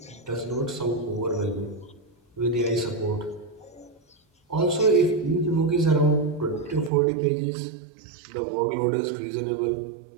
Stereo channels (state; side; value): drops out; left; at 6.9 s